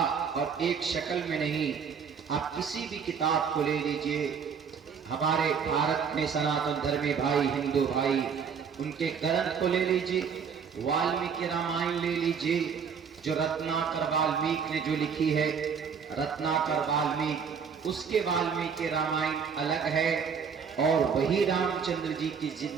اور ایک شکل میں نہیں۔ آپ کسی بھی کتاب کو لے لیجئے، ہمارے بھارت میں سناتن دھرمی بھائی، ہندو بھائی، ان کے گرنتھ کو لے لیجئے، والمیکی رامائن لے لیجئے، جو رتناکر والمیک نے جو لکھی ہے، رتناکر والمیک، اس کے والمیکی رامائن الگ ہے، اور وہی رام چندر جی کی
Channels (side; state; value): left; quieter; 6.6 dB